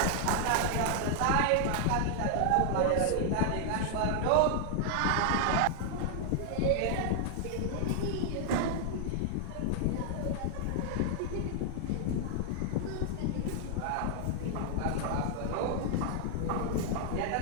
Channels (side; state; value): both; different; correlation 0.00